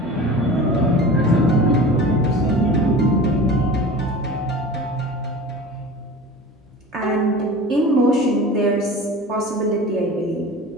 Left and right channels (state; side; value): normal; both; correlation 0.36